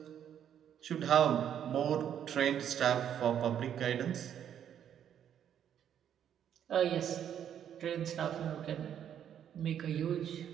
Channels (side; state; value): left; quieter; 9.5 dB